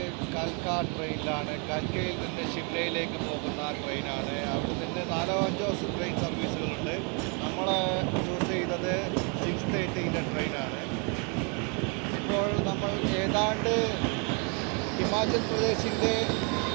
കൽക്ക ട്രെയിനിലാണ്. കൽക്കയിൽ നിന്ന് ഷിംലയിലേക്ക് പോകുന്ന ട്രെയിനാണ്. അവിടെ നിന്ന് 4-5 ട്രെയിൻ സർവീസുകളുണ്ട്. നമ്മൾ ചൂസ് ചെയ്തത് 6:30 ട്രെയിനാണ്. ഇപ്പോൾ നമ്മൾ ഏതാണ്ട് ഹിമാചൽ പ്രദേശിൻ്റെ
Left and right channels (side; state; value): left; quieter; 35.4 dB